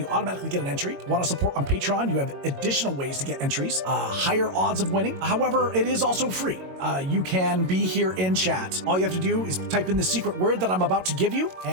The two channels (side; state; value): left; late; 22 ms